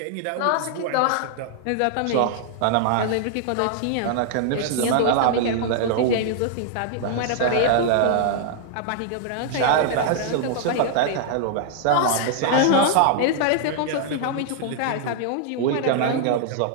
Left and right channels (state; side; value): different; both; correlation -0.01